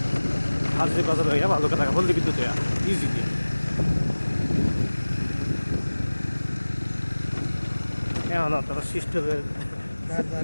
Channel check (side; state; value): both; inverted; correlation -1.00